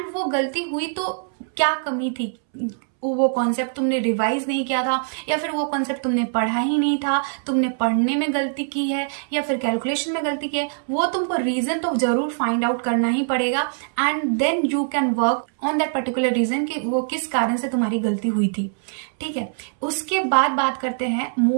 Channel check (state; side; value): silent; left; 64 dB below the other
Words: वो गलती हुई तो क्या कमी थी। वो कॉन्सेप्ट तुमने रिवाइज नहीं किया था, या फिर वो कॉन्सेप्ट तुमने पढ़ा ही नहीं था, तुमने पढ़ने में गलती की है, या फिर कैलकुलेशन में गलती की है। वो तुमको रीजन तो जरूर फाइंड आउट करना ही पड़ेगा and then you can work on that particular reason कि वो किस कारण से तुम्हारी गलती हुई थी। ठीक है। उसके बाद बात करते हैं